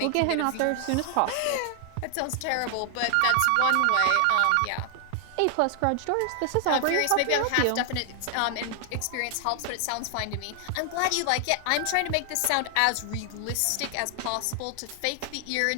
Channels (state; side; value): different; both; correlation 0.00